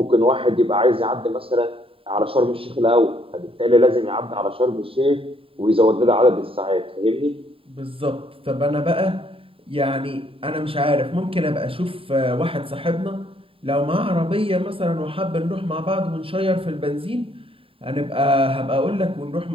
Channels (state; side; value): late; left; 0.27 ms